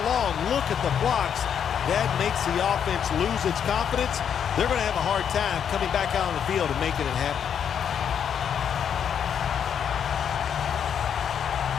long? Look at the blocks. That makes the offense lose its confidence. They're going to have a hard time coming back out on the field and making it happen.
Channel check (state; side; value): quieter; right; 8.2 dB